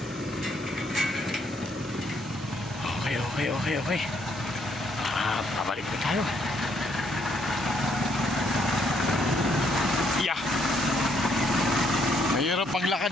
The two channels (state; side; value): normal; both; correlation 0.71